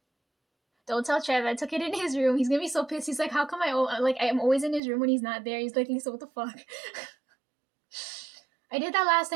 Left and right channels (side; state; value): left; drops out; at 4.8 s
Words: Don't tell Trev, I took it in his room. He's gonna be so pissed. He's like, how come I'm always in his room when he's not there? He's like, Lisa, what the fuck? I did that last